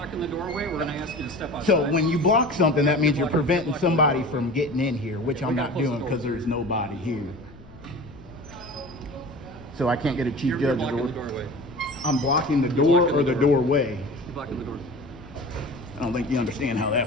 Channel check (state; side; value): noise; left; rumble, 21 dB below the sound